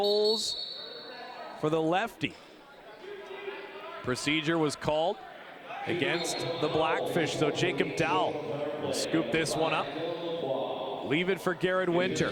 for the lefty. Procedure was called against the Blackfish, so Jacob Dowell will scoop this one up. Leave it for Garrett Winter.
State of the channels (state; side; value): identical; both; correlation 1.00